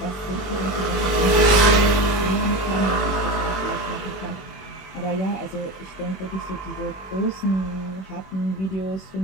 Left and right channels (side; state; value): right; late; 21 ms